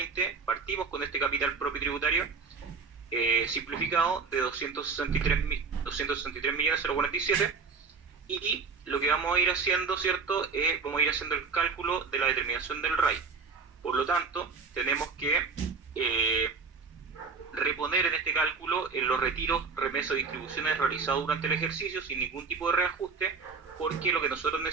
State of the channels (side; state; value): left; quieter; 4.8 dB